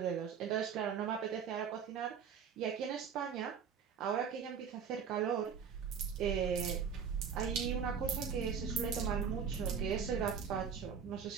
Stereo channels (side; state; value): left; quieter; 7.0 dB